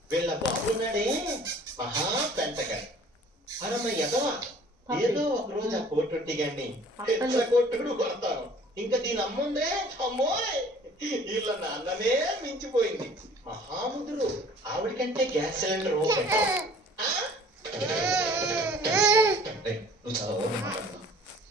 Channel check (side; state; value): both; normal; correlation 0.51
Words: వీళ్ళ బాబున్నాడే మహా పెంటగా. అరమ్మ ఎదవా, ఏదో ఒక రోజు ఆ కోటొట్టి గాని కొట్టుడు కొడతాను. ఇంకా దీని అమ్ముందే అమ్మోయ్, వీళ్ళ నాన్ననే మించిపోయింది. మహాముదురు ఆవిడికంటే గ్యాస్ సిలిండర్ నువ్వు చాలా ఓపెన్ మాట్లాడుతున్నావు.